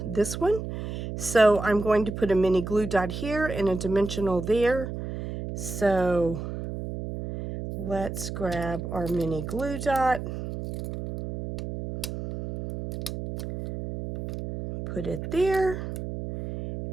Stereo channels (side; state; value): right; noise; hum, 7 dB below the sound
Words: this one. So I'm going to put a mini glue dot here and a dimensional there. So let's grab our mini glue dot. Put it there.